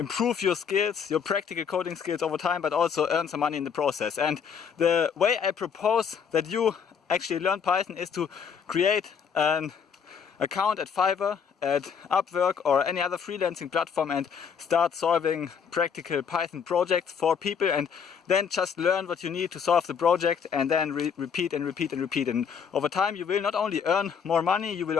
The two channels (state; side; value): quieter; right; 6.9 dB